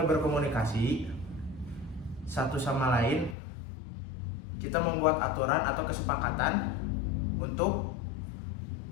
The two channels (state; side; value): drops out; right; at 3.4 s